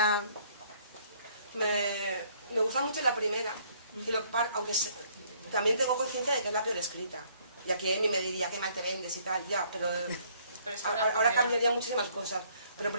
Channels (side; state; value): both; inverted; correlation -0.63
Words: Me gusta mucho la primera, y aunque también tengo conciencia de que es la peor escrita. Y aquí Amy me diría que mal te vendes y tal, ya, pero Pero es que la ahora primera- cambiaría muchísimas cosas. Pero en